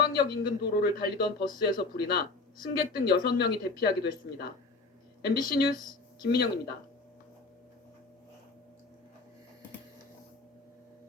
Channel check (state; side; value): quieter; right; 3.7 dB